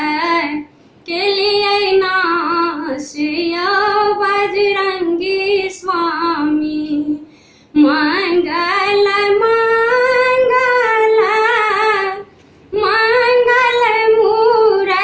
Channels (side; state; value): both; identical; correlation 1.00